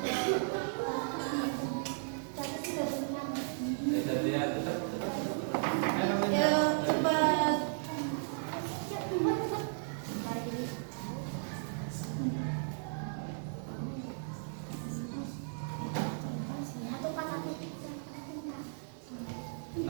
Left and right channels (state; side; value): silent; left; digital silence